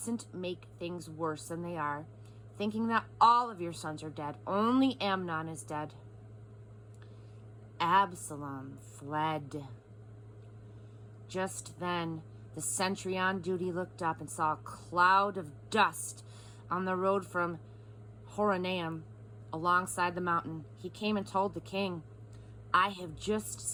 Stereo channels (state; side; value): identical; both; correlation 1.00